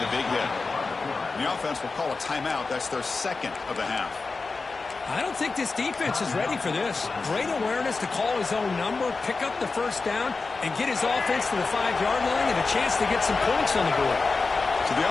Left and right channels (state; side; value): quieter; right; 4.1 dB